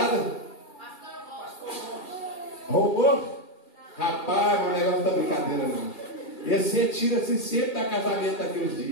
Roubou? Rapaz, o negócio não está brincadeira não. Esse retira-se sempre da casamento daqui uns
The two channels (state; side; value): late; right; 2.3 ms